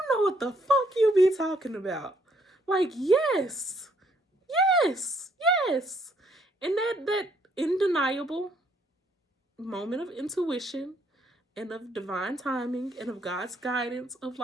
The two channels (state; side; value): normal; both; correlation 0.68